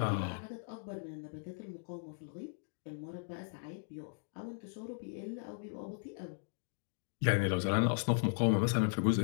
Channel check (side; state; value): right; silent; digital silence